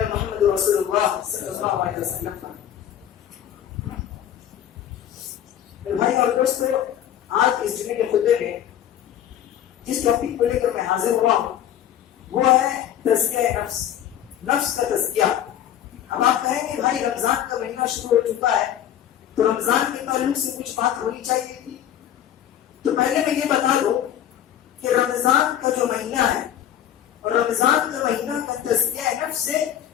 رسول اللہ صلی اللہ علیہ وسلم پر. بھائی اور دوستو، آج اس جمعے کے خطبے میں جس ٹاپک کو لے کر میں حاضر ہوا ہوں وہ ہے تزکیہ نفس، نفس کا تزکیہ. اب آپ کہیں گے بھائی رمضان کا مہینہ شروع ہو چکا ہے تو رمضان کے تعلق سے کچھ بات ہونی چاہیے تھی. تو پہلے میں یہ بتا دوں کہ رمضان کا جو مہینہ ہے اور رمضان کا مہینہ کا تزکیہ نفس سے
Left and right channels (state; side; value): quieter; right; 10.7 dB